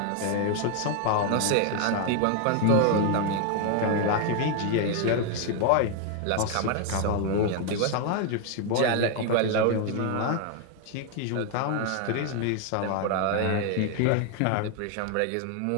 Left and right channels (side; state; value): both; different; correlation 0.01